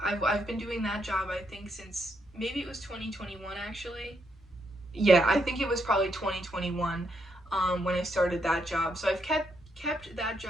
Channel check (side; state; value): both; normal; correlation 0.78